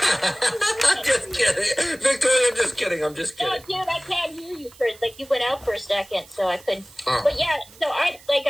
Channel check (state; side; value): noise; right; hiss, 23 dB below the sound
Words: I'm just kidding. Victoria, I'm just kidding. No, dude, I can't hear you first. Like, you went out for a second, so I couldn't. Oh. But yeah, so like